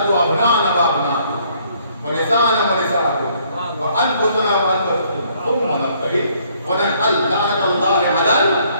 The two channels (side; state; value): both; inverted; correlation -0.65